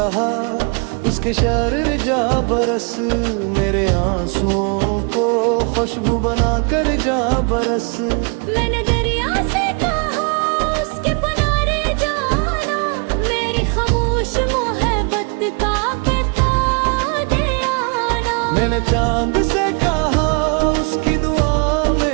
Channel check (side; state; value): left; quieter; 35.4 dB